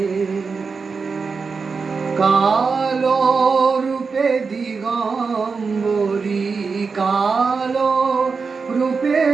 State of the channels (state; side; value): quieter; left; 4.9 dB